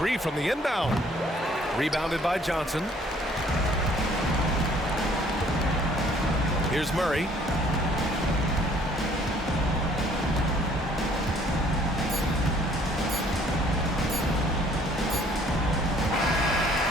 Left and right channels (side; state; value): both; normal; correlation 0.59